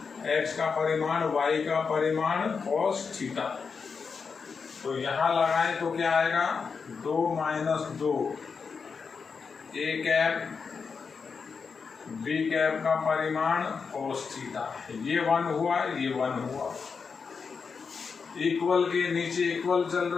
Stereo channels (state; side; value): quieter; right; 5.5 dB